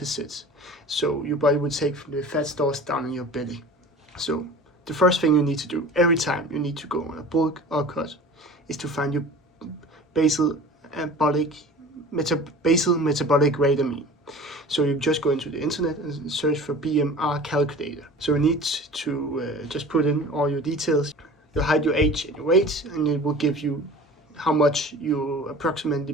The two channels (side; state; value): both; normal; correlation 0.41